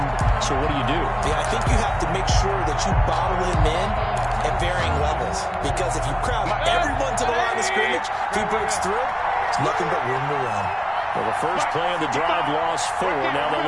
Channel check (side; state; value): both; identical; correlation 1.00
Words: So what do you do? Yeah, I think you have to make sure that you bottle him in at varying levels. Because if you crowd everyone to the line of scrimmage, if he breaks through, it's nothing but room to run. Well, the first play of the drive lost 4. Now they'll